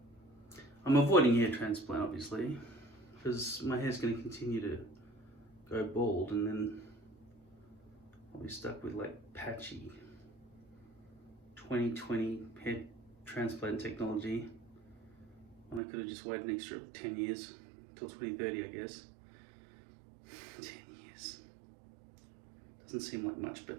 I'm avoiding hair transplant, obviously, because my hair's going to continue to go bald, and then I'll be stuck with like patchy 2020 hair transplant technology, and I could have just waited an extra 10 years till 2030, I guess. 10 years doesn't seem like much, but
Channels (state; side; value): drops out; left; at 15.8 s